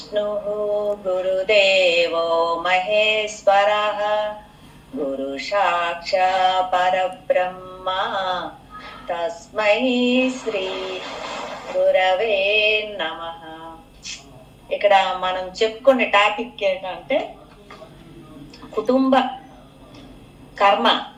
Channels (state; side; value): identical; both; correlation 1.00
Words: గురుదేవో మహేశ్వర గురు సాక్షా పరబ్రహ్మ తస్మై శ్రీ గురవే నమః. ఇక్కడ మనం చెప్పుకునే టాపిక్ ఏంటంటే కుటుంబ కర్మ